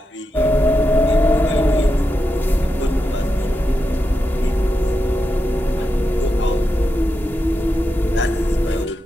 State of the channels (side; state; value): both; normal; correlation 0.87